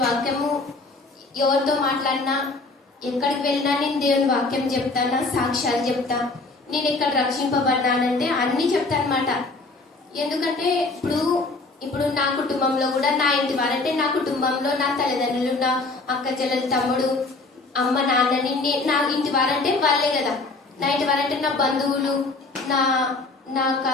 వాక్యము ఎవరితో మాట్లాడినా ఎక్కడికి వెళ్ళినా నేను దేవుని వాక్యం చెప్తాను, సాక్ష్యాలు చెప్తా. నేను ఇక్కడ రక్షింపబడినానంటే అన్ని చెప్తాను అనమాట. ఎందుకంటే ఇప్పుడు నా కుటుంబంలో కూడా నా ఇంటి వారంటే నా కుటుంబంలో నా తల్లిదండ్రులు, నా అక్క చెల్లెలు, తమ్ముడు, అమ్మ, నాన్నని నా ఇంటి వారంటే వాళ్ళే కదా. నా ఇంటి వారంటే నా బంధువులు, నా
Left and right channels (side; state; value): right; quieter; 3.5 dB